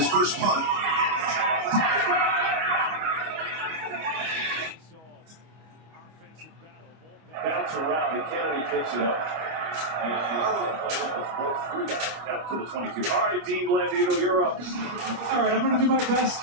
first punt. Bounce around, and Kennedy picks it up. And both three guys out to the 22. All right, Dean Blandino, you're up. All right, I'm going to do my best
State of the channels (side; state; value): left; late; 25 ms